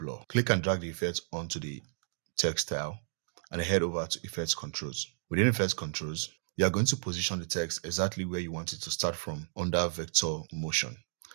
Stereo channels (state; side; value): silent; left; digital silence